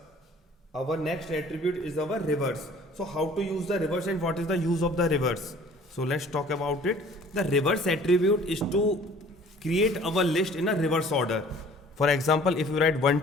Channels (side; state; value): both; normal; correlation 0.51